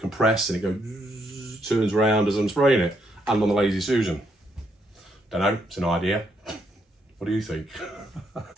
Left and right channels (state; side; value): normal; both; correlation 0.75